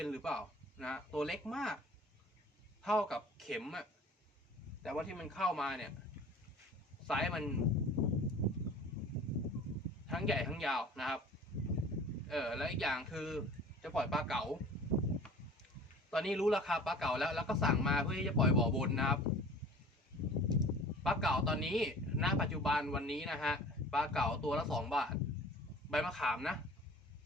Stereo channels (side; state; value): both; normal; correlation 0.44